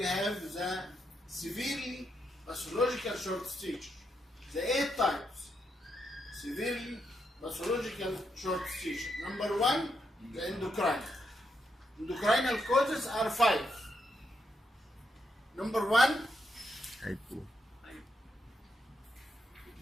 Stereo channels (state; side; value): normal; both; correlation 0.81